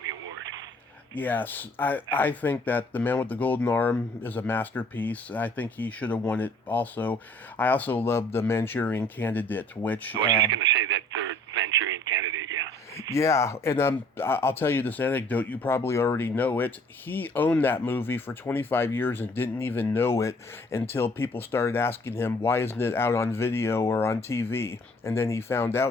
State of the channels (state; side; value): normal; both; correlation 0.57